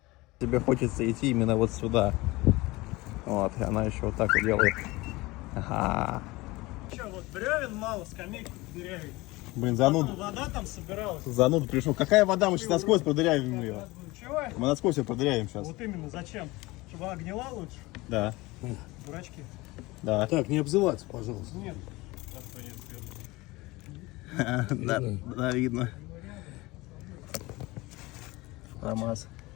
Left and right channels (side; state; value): right; quieter; 21.4 dB